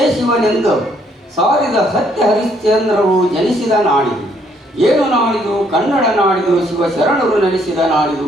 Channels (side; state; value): both; normal; correlation 0.68